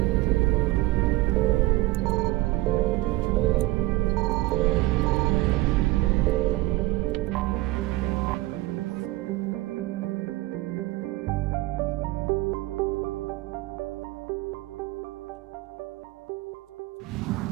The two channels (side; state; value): left; quieter; 19.1 dB